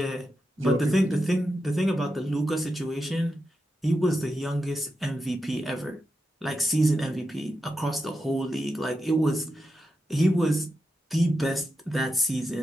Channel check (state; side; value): normal; both; correlation 0.88